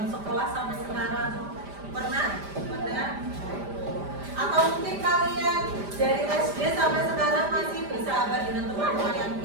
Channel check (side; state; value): left; late; 5.0 ms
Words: sekolah sampai sekarang, pernah? Atau mungkin kalian dari SD sampai sekarang masih bersahabat dengan teman-teman yang